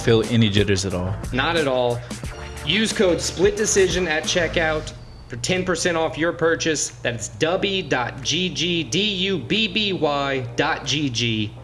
feel any jitters at all. Not at all. Use code SPLITDECISION at checkout for 10% off your purchase. That's dubby.gg, dubby.gg.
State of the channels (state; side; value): identical; both; correlation 1.00